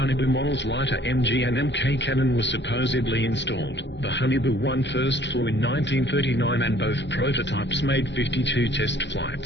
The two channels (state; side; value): late; right; 0.52 ms